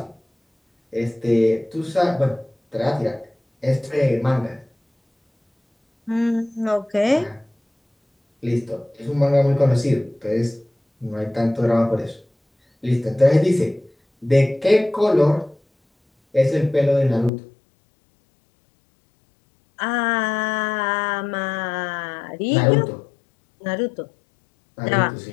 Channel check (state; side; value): drops out; right; at 17.3 s